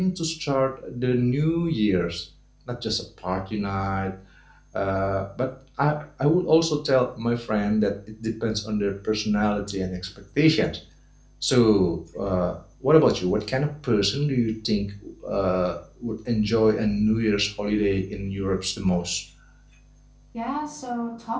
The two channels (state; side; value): identical; both; correlation 1.00